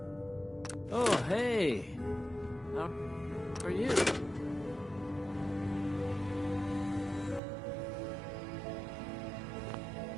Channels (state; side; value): drops out; left; at 7.4 s